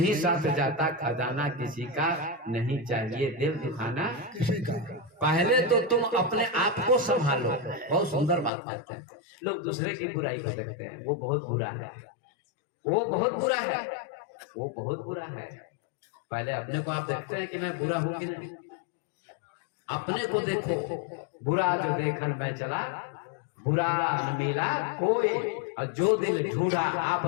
साथ जाता खजाना किसी का, नहीं चाहिए दिल दुखाना किसी का। पहले तो तुम अपने आप को संभालो। बहुत सुंदर बात कहते हैं। लोग दूसरे की बुराई को देखते हैं, वो बहुत बुरा है, वो बहुत बुरा है, वो बहुत बुरा है। पहले अपने को आप देखते हैं कि मैं बुरा हूं कि नहीं, अपने को देखो। बुरा जो देखन मैं चला, बुरा न मिला कोई, और जो दिल ढूंढा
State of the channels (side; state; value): right; drops out; at 8.5 s